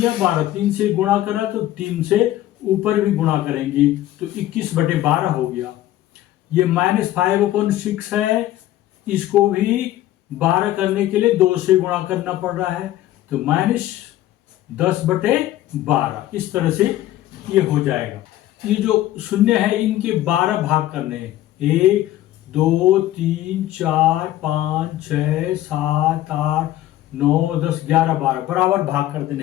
12, 3 से गुणा करा तो 3 से ऊपर भी गुणा करेंगे तो 21/12 हो गया। ये -5/6 है, इसको भी 12 करने के लिए 2 से गुणा करना पड़ रहा है, तो -10/12 इस तरह से ये हो जाएगा। ये जो शून्य है इनके 12 भाग करने हैं। 1 2 3 4 5 6 7 8 9 10 11 12 बराबर भाग कर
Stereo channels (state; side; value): quieter; right; 14.2 dB